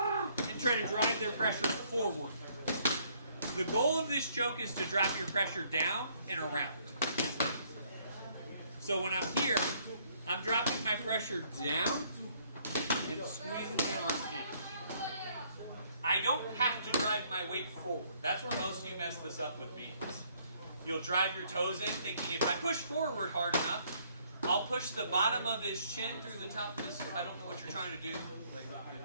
And try to drive their pressure forward. The goal of this choke is to drop your pressure down and around. So when I'm here, I'm dropping my pressure down and squeezing my arm in. I don't have to drive my weight forward. That's where most of you mess this up with me. You'll drive your toes in thinking if I push forward hard enough, I'll push the bottom of his chin through the top of his, I don't know what you're trying to do. Like,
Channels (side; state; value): both; inverted; correlation -0.65